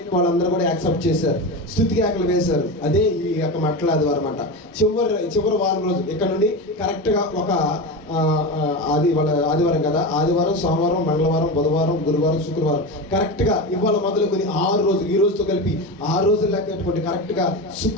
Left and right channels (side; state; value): both; normal; correlation 0.21